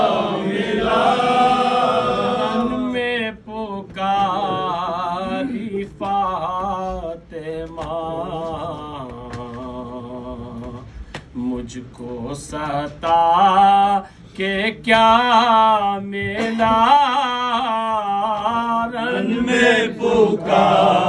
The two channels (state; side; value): identical; both; correlation 1.00